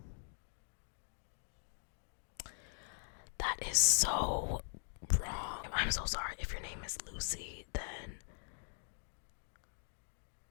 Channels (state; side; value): silent; right; digital silence